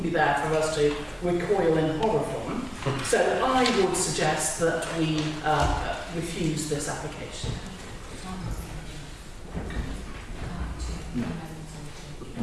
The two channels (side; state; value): both; identical; correlation 1.00